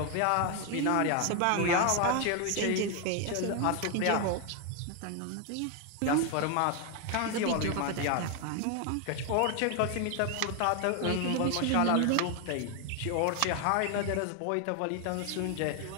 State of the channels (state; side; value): different; both; correlation 0.01